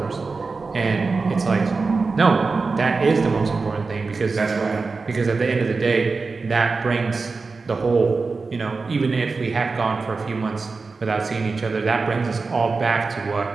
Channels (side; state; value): left; quieter; 4.2 dB